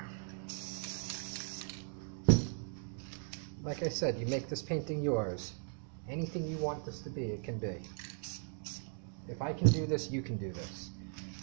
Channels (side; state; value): left; silent; 52 dB below the other